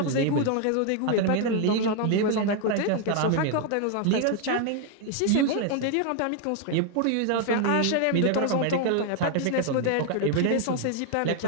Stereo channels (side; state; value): both; different; correlation 0.00